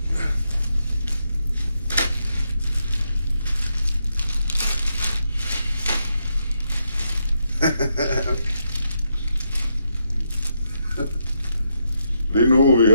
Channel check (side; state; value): both; inverted; correlation -0.80